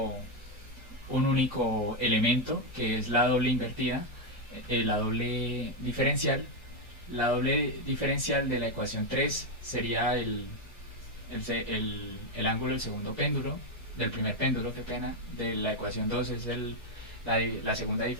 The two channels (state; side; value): normal; both; correlation 0.04